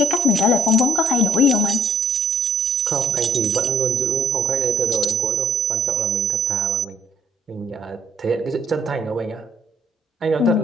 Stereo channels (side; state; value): both; normal; correlation 0.59